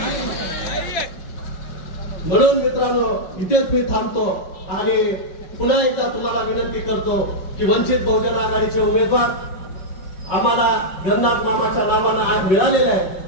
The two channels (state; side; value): late; right; 5.4 ms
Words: म्हणून मित्रांनो, इथेच मी थांबतो आणि पुन्हा एकदा तुम्हाला विनंती करतो की वंचित बहुजन आघाडीचे उमेदवार आम्हाला गणनाथ मामाच्या नावानं आज मिळालेले आहे,